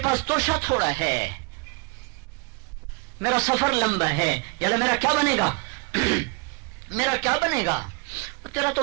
پاس توشہ تھوڑا ہے، میرا سفر لمبا ہے، یعنی میرا کیا بنے گا میرا کیا بنے گا؟ تیرا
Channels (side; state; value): left; quieter; 30.6 dB